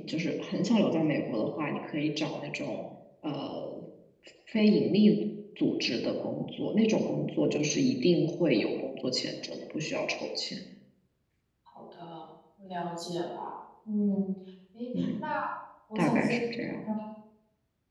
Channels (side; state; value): both; identical; correlation 1.00